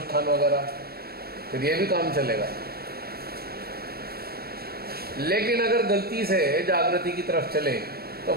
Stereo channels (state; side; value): late; left; 0.45 ms